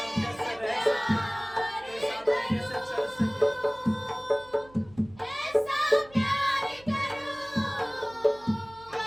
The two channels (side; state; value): right; noise; hum, 24 dB below the sound